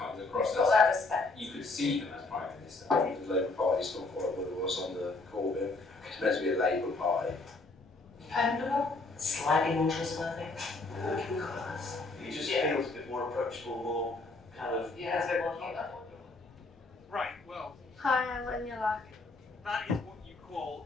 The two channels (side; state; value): right; quieter; 3.4 dB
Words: across Got that as, respect. you could see him as Prime Minister. I think the Labour Party's not quite what it was on the Corbyn. It's meant to be a Labour Party. Dependable. Slightly more trustworthy. Working class. He just feels a bit more approachable, more kind of... Yeah, it's a bit more human. Right, well, Hi, I'm Anya. that is what you